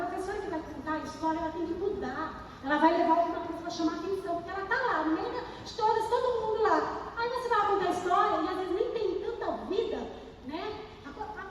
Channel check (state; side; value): identical; both; correlation 1.00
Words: que vai contar a história, ela tem que mudar. Ela vai levar alguma coisa para chamar a atenção, porque ela está lá, no meio de todas, todo mundo lá. Aí você vai contar a história e às vezes nem tem tanta vida, a